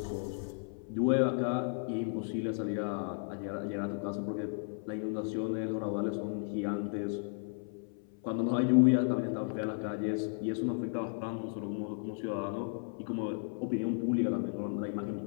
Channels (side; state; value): right; silent; 55 dB below the other